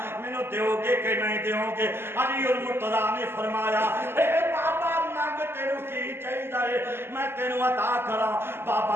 میں نو دیو گے کہ نہیں دیو گے؟ علی المرتضیٰ نے فرمایا اے بابا مانگ تینو کی چاہیے میں تینو عطا کرا۔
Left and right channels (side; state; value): left; late; 0.11 ms